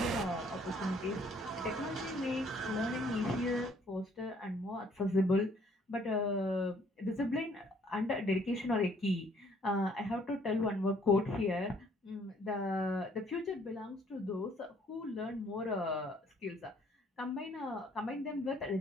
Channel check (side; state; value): both; normal; correlation 0.62